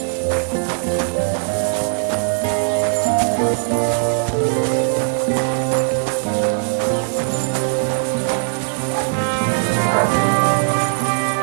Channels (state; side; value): silent; left; 60 dB below the other